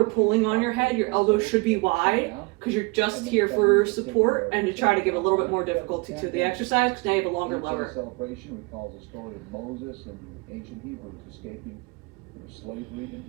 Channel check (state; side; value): quieter; left; 27.5 dB